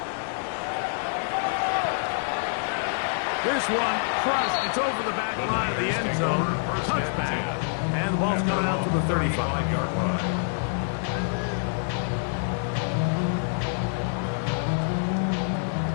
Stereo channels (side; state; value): right; silent; 61 dB below the other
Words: This one crushed. It's over the back line of the end zone. Touchback. And the ball's coming out to the 35-yard line.